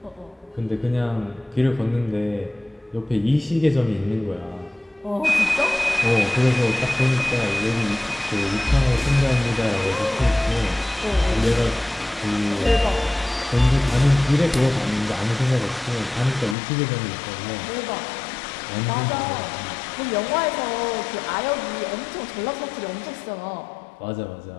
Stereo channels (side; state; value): right; drops out; at 16.6 s